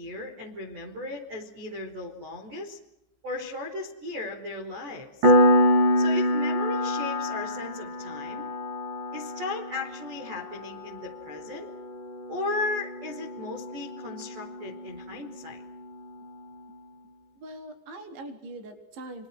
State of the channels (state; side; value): late; left; 14 ms